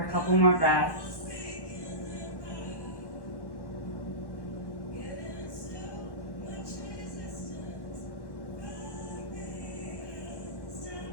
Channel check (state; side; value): late; right; 1.1 ms